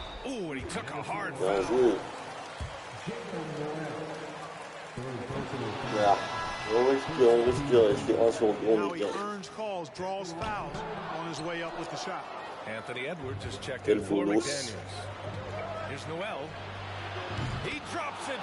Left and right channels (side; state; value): both; identical; correlation 1.00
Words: Ooh, and he took a hard foul. Now he earns calls, draws fouls on his way up with the shot. Anthony Edwards has checked in for McDaniels. Here's Noel. He drops it